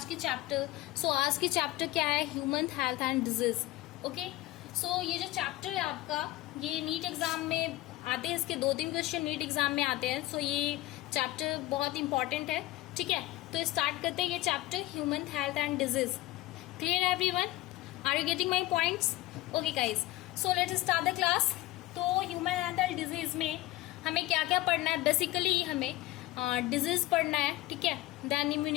की चैप्टर. आज की चैप्टर क्या है? Human health and disease. Okay, ये जो चैप्टर है आपका, ये नीट एग्जाम में आते हैं. इसके 2-3 क्वेश्चन नीट एग्जाम में आते हैं. ये चैप्टर बहुत इंपॉर्टेंट है. ठीक है, तो स्टार्ट करते हैं ये chapter human health and disease. Clear everyone? Are you getting my points? Okay guys, let's start the class. तो ह्यूमन हेल्थ एंड डिजीज में हमें क्या क्या पढ़ना है? बेसिकली हमें डिजीज पढ़ना है. ठीक है, देन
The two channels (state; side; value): quieter; right; 17.2 dB